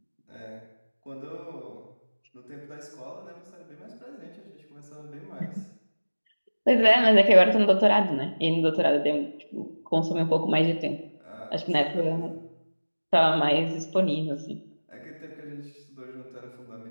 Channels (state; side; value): inverted; both; correlation -1.00